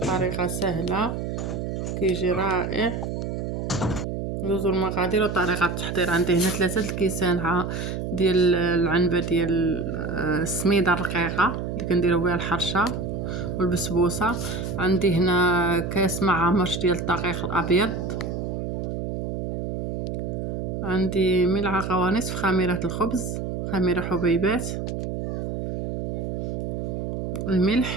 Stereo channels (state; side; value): noise; right; hum, 4 dB below the sound